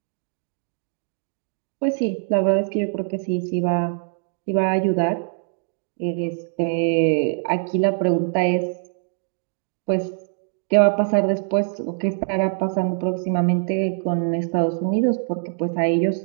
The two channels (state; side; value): silent; left; digital silence